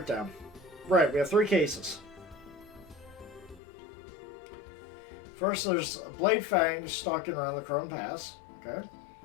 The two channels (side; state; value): right; drops out; at 3.6 s